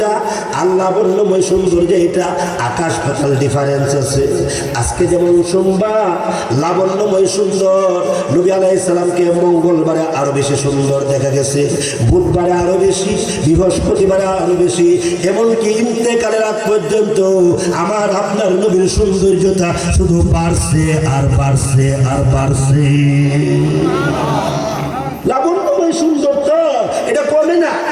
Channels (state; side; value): identical; both; correlation 1.00